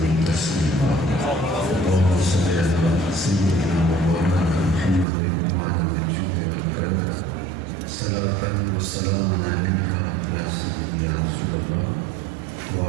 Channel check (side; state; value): left; drops out; at 5.1 s